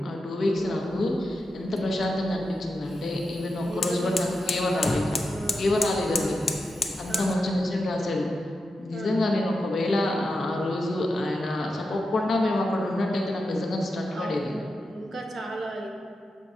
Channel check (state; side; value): normal; both; correlation 0.89